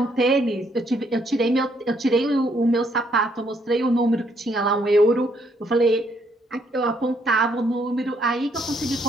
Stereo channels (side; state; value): both; normal; correlation 0.71